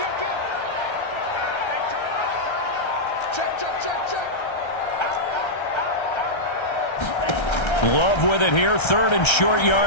Love with it here, 3rd and short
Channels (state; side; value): late; right; 1.3 ms